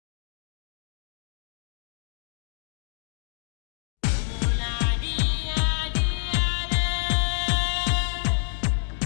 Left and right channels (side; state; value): right; silent; 60 dB below the other